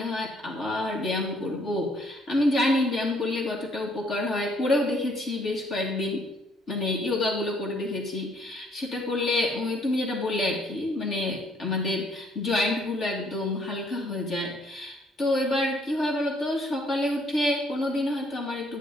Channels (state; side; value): normal; both; correlation 0.65